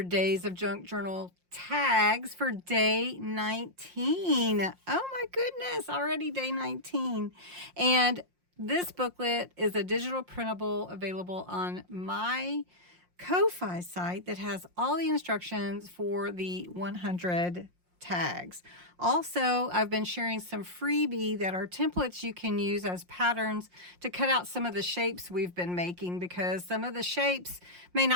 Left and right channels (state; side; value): late; left; 5.6 ms